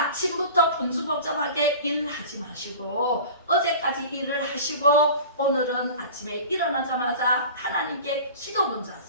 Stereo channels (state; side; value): inverted; both; correlation -0.38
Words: 분주복잡하게 일을 하지 마시고 어제까지 일을 하시고 오늘은 아침에 일어나자마자 하나님께 기도 먼저